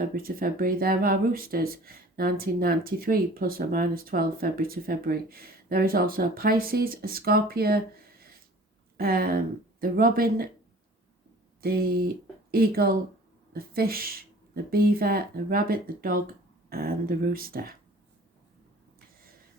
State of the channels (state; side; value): normal; both; correlation 0.47